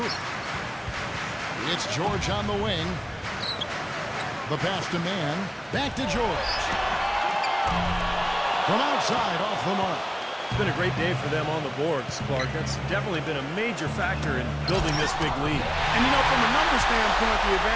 It's George on the wing. The pass to Man. Back to George. From outside, off the mark. It's been a great day for them on the boards, Clark. That's definitely been a major factor in building this big lead. And, you know, from a number standpoint, the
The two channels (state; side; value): identical; both; correlation 1.00